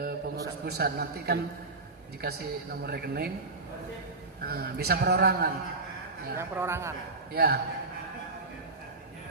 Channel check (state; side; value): quieter; left; 3.4 dB